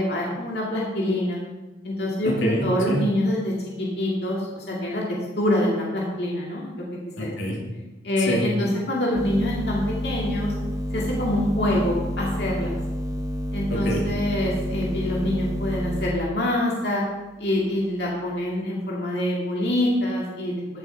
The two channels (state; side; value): normal; both; correlation 0.66